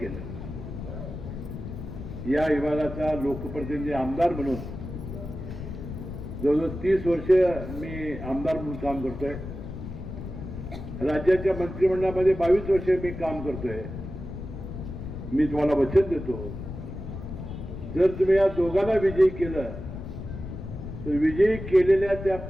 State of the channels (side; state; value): left; noise; rumble, 9 dB below the sound